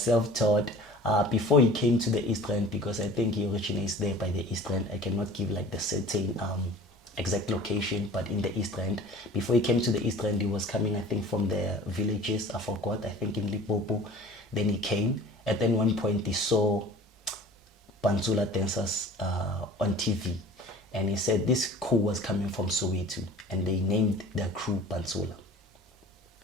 before he came to the East End, because I think he originates there by the East End. I cannot give like the certain exact location, but in the East End. Before he came to the East End, he was coming, I think, from the villages. I forgot. I think in Limpopo. Then he came. At then one point, he saw Pantsula dancers on TV, and he said this crew was coming from Soweto, and they named their crew Pantsula.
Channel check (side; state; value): both; normal; correlation 0.44